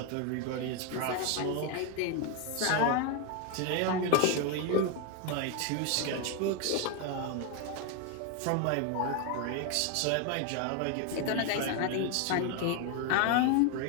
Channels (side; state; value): both; different; correlation 0.01